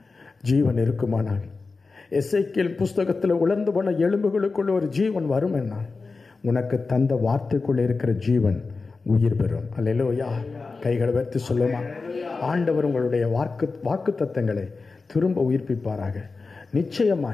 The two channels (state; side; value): quieter; right; 4.1 dB